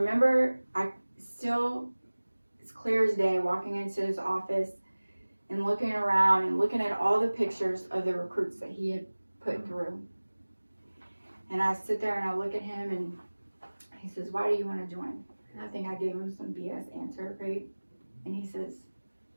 it's clear as day, walking into his office and looking around and looking at all the pictures of the recruits that he had put through. And I sit there and I look at him and he says, why do you want to join? And I think I gave him some BS answer, right? And he says,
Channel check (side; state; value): both; inverted; correlation -1.00